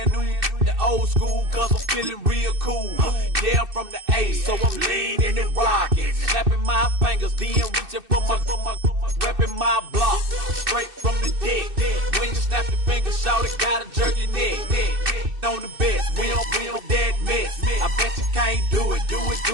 The old school, cause I'm feeling real cool. Yeah, I'm from the A, so I'm leaning and rocking. Snapping my fingers, then reaching for my repping my block. Straight from the deck. When you snap your fingers, shout it, gotta jerk your neck. On the best, we don't that mess. I bet you can't do it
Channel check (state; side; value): late; left; 2.6 ms